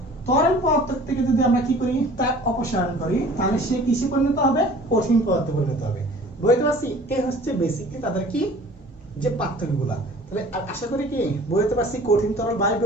তরল পদার্থ থেকে যদি আমরা কি করি তাপ অপসারণ করি তাহলে সে কিসে পরিণত হবে, কঠিন পদার্থে পরিণত হবে। বুঝতে পারছি? এই হচ্ছে বেসিক্যালি তাদের কি যে পার্থক্যগুলা। তাহলে আশা করি কি বুঝতে পারছি কঠিন তরল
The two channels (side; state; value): both; normal; correlation 0.47